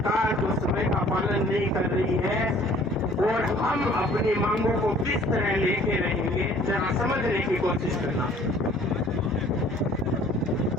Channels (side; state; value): both; normal; correlation 0.54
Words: जो समय का पालन नहीं कर रही है और हम अपनी मांगों को किस तरह लेके रहेंगे, जरा समझने की कोशिश करना।